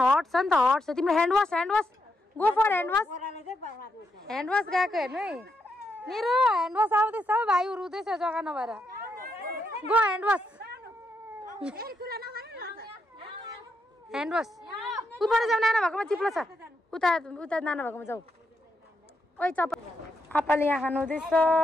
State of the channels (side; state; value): both; normal; correlation 0.81